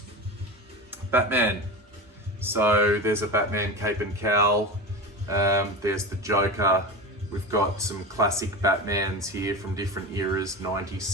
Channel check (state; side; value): normal; both; correlation 0.26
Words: Batman. So there's a Batman cape and cowl. There's the Joker. We've got some classic Batmans here from different eras, 90s,